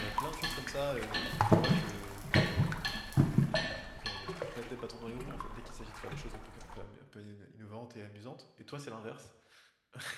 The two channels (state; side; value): identical; both; correlation 1.00